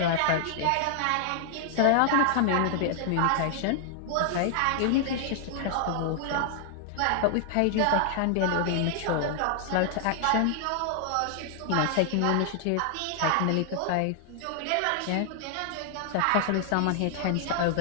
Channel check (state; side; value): different; both; correlation 0.00